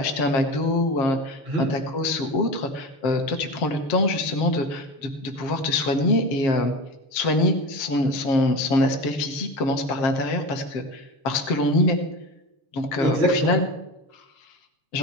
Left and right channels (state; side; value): late; right; 7.4 ms